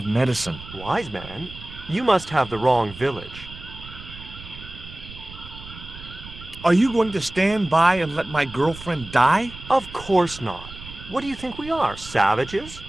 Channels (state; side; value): noise; right; rumble, 15 dB below the sound